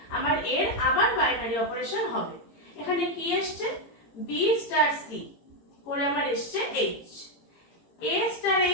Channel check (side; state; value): right; late; 18 ms